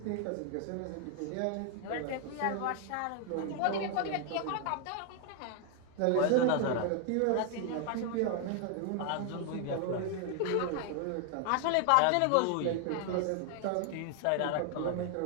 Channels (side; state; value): both; different; correlation 0.00